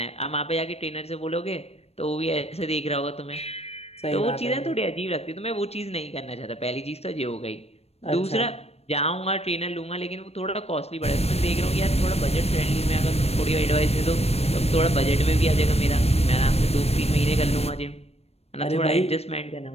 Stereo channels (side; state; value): right; late; 0.30 ms